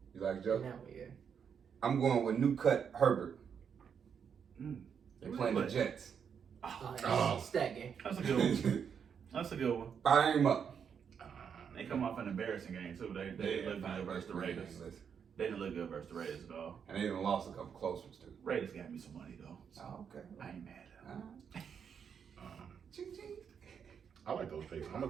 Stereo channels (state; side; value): quieter; left; 7.2 dB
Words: You like In Joe? that one, yeah. I'm going with new cut Herbert. Mm. They're playing the Jets. Oh. Stat game. That's a good one. That's a good one. Fire him up. They come off an embarrassing game too. They look good versus the Raiders. They didn't look good versus the Raiders though. And they even lost a couple close ones too. Raiders got me some money though. So Oh, okay. I ain't mad at them. Ching, ching. I like those picks. I'm gonna